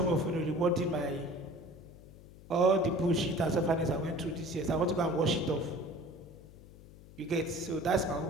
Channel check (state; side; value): noise; left; hum, 20 dB below the sound